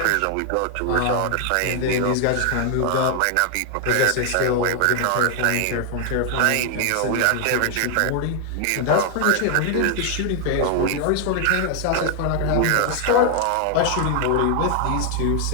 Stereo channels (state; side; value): different; both; correlation 0.00